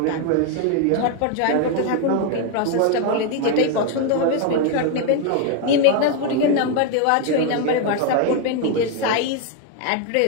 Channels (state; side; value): different; both; correlation 0.01